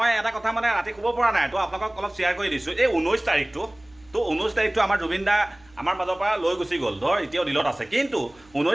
এটা কথা মানে ৰাতি ক'ব পৰা নাই তো আপোনালোকক অলপ শ্বেয়াৰ কৰি দিছোঁ এই 19 তাৰিখটো তো 19 তাৰিখটো আমাৰ জুবিন দা আমাৰ মাজৰ পৰা লৈ গুচি গ'ল ধৰ এতিয়াও দিলত আছে কিন্তু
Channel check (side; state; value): right; noise; hum, 29 dB below the sound